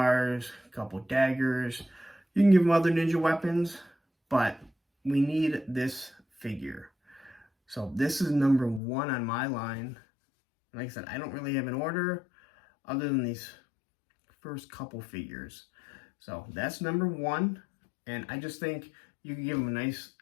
a couple daggers. You can give him other ninja weapons, but we need this figure. So this is number 1 on my line. Like I said, I don't really have an order other than these first couple figures. So that's number 1. And I just think you can give them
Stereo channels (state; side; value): drops out; right; at 8.8 s